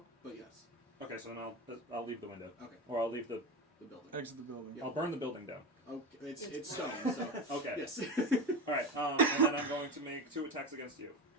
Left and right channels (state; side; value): normal; both; correlation 0.23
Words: but yes, Okay, so then I'll leave the window, okay, or I'll leave the. the building. Exit the building. Yeah. I'll burn the building down. Okay, it's It's stone, so Okay. yes. All right, and then I'm going to make 2 attacks against you.